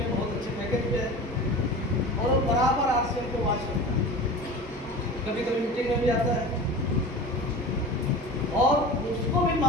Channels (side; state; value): both; normal; correlation 0.34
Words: बहुत अच्छे पैकेज पे है और वो बराबर आरसीएम को वॉच करता है, कभी कभी मीटिंग में भी आता है। और उसको भी